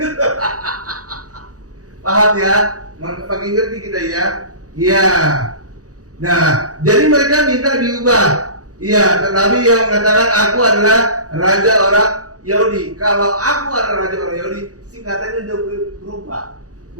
Paham ya? Makin ngerti kita ya? Iya. Nah, jadi mereka minta diubah. Iya, tetapi yang mengatakan aku adalah raja orang Yahudi. Kalau aku adalah raja orang Yahudi, singkatannya udah berubah.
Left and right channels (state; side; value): late; left; 0.67 ms